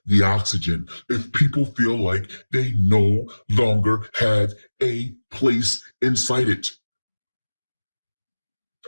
the oxygen if people feel like they no longer have a place inside it.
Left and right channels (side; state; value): both; inverted; correlation -1.00